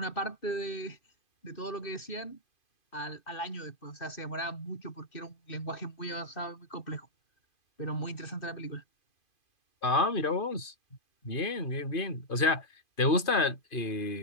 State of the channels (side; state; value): right; late; 2.5 ms